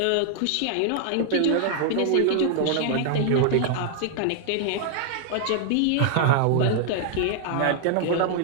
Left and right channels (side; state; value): both; different; correlation 0.00